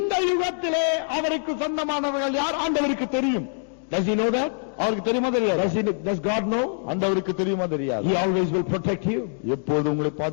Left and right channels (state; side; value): silent; right; digital silence